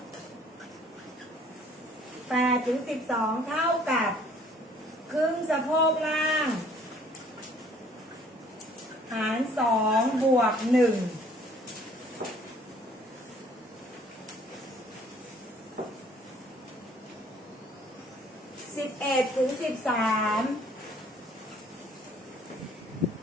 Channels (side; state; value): both; normal; correlation 0.58